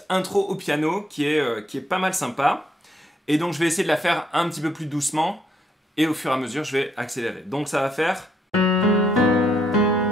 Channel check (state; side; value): normal; both; correlation 0.73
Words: intro au piano qui est pas mal sympa. Et donc je vais essayer de la faire un petit peu plus doucement et au fur et à mesure, je vais accélérer. Donc ça va faire...